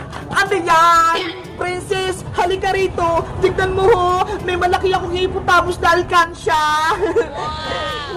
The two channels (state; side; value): identical; both; correlation 1.00